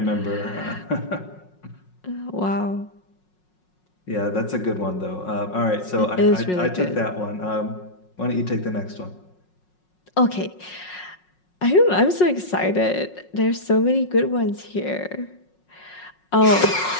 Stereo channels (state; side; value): late; right; 5.5 ms